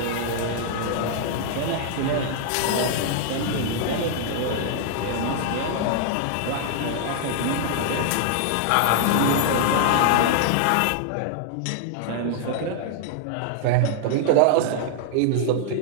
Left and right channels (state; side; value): different; both; correlation 0.00